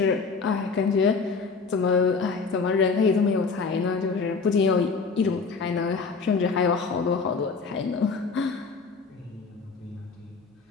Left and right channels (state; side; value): quieter; right; 4.7 dB